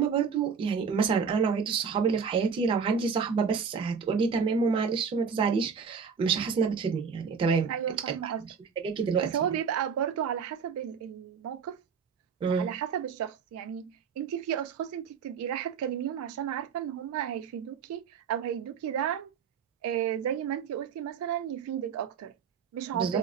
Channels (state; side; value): quieter; left; 6.2 dB